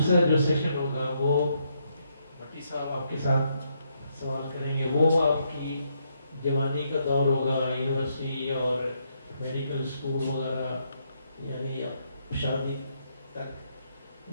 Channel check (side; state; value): both; inverted; correlation -0.76